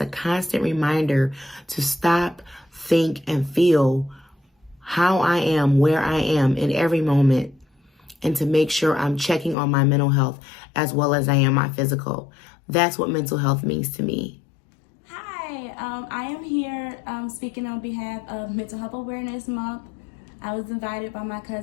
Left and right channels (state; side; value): drops out; right; at 9.6 s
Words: constant reminder to stop, think, and feel how I am, where I am in every moment, and to make sure I'm checking on my mental health as well as I am my physical. That's what mental health means to me. Hi, I am here speaking on behalf of Mental Health Awareness Month. I was invited by my